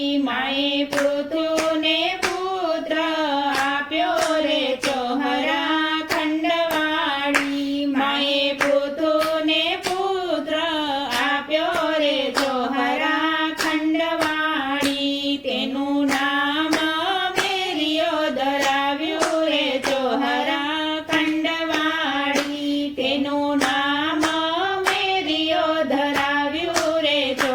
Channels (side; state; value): both; identical; correlation 1.00